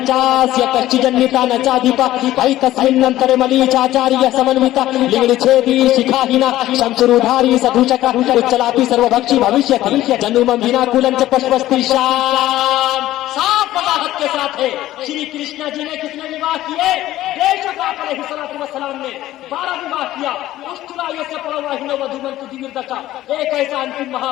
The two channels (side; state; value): right; quieter; 14.7 dB